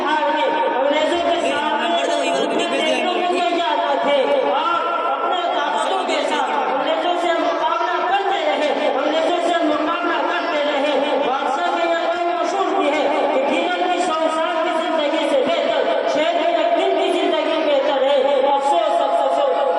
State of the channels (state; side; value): identical; both; correlation 1.00